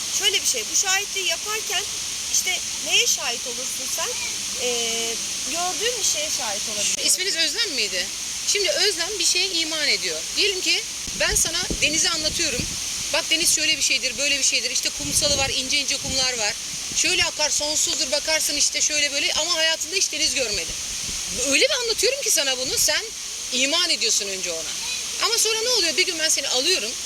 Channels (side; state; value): both; identical; correlation 1.00